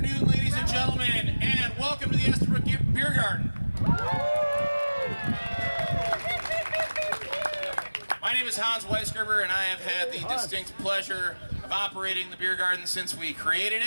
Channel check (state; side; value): inverted; both; correlation -1.00